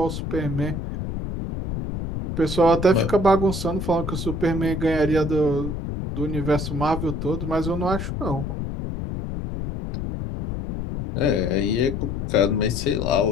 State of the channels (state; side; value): noise; left; rumble, 5 dB below the sound